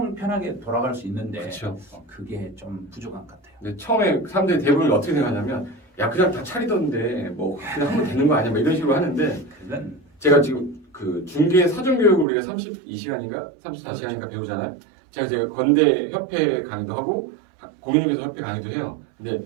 편하게 돌아갈 수 있는데 그렇죠. 그게 좀 부족한 것 같아요. 근데 처음에 사람들이 대부분 어떻게 생각하냐면 야 그냥 다 차리던데 뭐 그냥 하면 되는 거 아니야 뭐 이런 식으로 하는데 제가 지금 그 중개 사전 교육을 우리가 32시간인가 34시간인가 배우잖아요. 제가 건대 협회 강의도 하고 공인중개사 협회 강의도 해요. 근데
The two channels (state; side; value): drops out; left; at 12.2 s